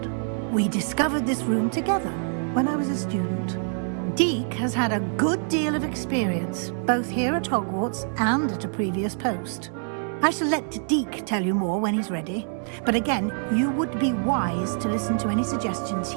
We discovered this room together when I was a student. Deke has had a good deal of experience, both here at Hogwarts and at a previous post. I shall let Deke tell you more when he's ready, but again, you would be wise to listen to any suggestions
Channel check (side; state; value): left; silent; 61 dB below the other